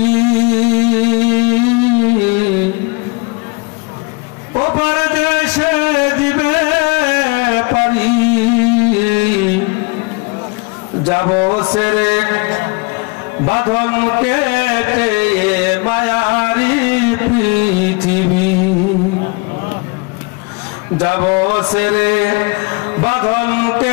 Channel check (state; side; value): quieter; right; 29.3 dB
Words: ওপার দেশে দিবে পারি যাব সেরে বাঁধন কেটে মায়ারি পৃথিবী যাব সেরে বাঁধন